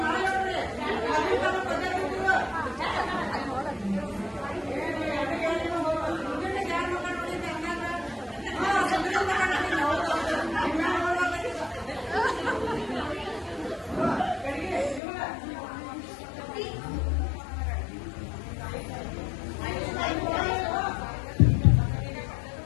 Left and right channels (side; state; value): right; drops out; at 15.0 s